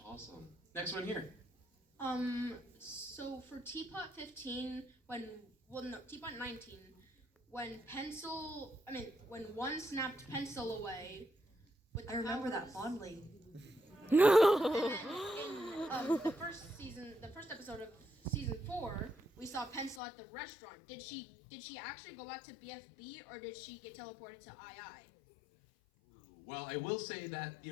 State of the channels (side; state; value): right; drops out; at 20.0 s